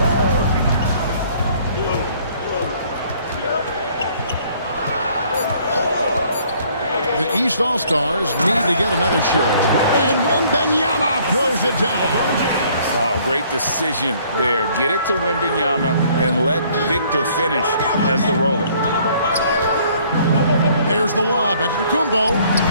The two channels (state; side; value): inverted; both; correlation -0.60